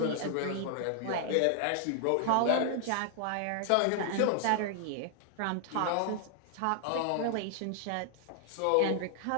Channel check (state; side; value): different; both; correlation 0.00